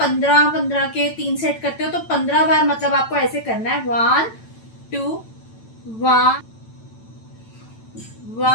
के 3 सेट करते हो तो 15 बार मतलब आपको ऐसे करना है, 1 2 1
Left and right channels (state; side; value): late; right; 9.0 ms